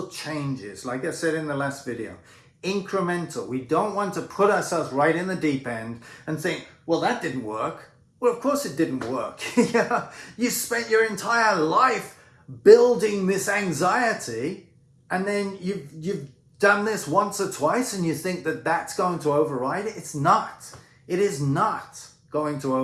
changes. Like I said in the last video, incremental. We don't want to put ourselves right in the deep end and think, well, that didn't work. Well, of course it didn't work. Yeah, you spent your entire life building this anxiety, and then you've done this once or twice and you think that that's going to override it. It's not. It is not going to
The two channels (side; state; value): both; identical; correlation 1.00